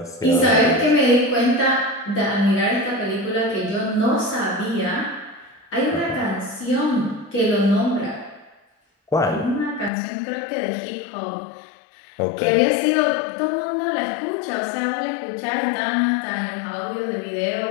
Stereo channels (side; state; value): right; drops out; at 9.9 s